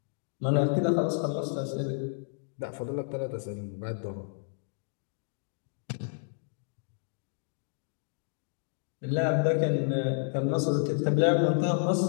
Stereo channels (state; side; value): silent; right; digital silence